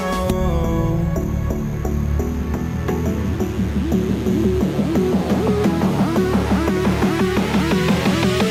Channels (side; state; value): both; identical; correlation 1.00